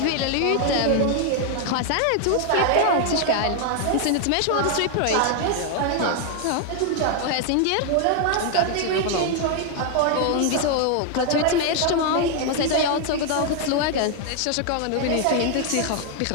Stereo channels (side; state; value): both; different; correlation 0.00